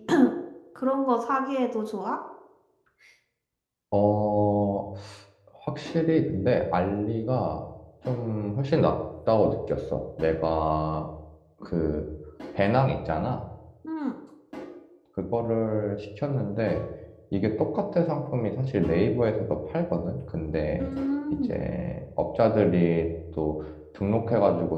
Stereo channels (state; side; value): identical; both; correlation 1.00